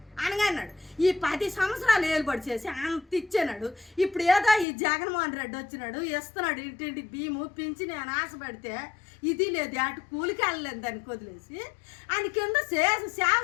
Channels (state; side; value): drops out; right; at 4.7 s